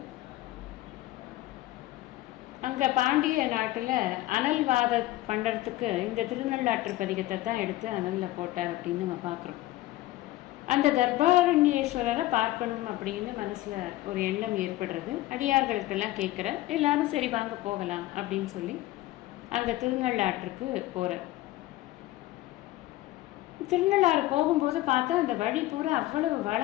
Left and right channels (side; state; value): right; quieter; 16.7 dB